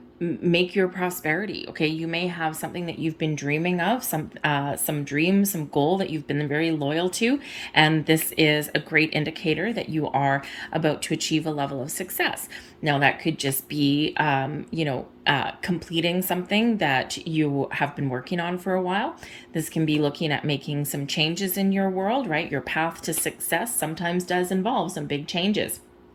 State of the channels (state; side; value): identical; both; correlation 1.00